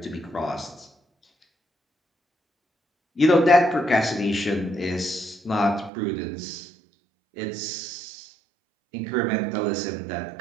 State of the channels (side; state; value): left; drops out; at 5.9 s